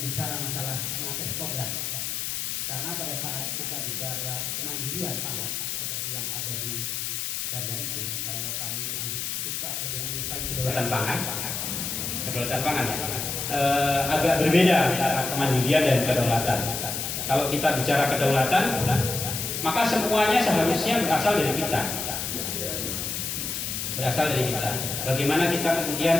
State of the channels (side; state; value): left; noise; hiss, 3 dB below the sound